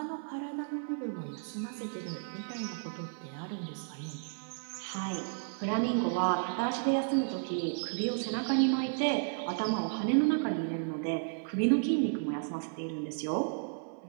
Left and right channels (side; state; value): left; silent; 56 dB below the other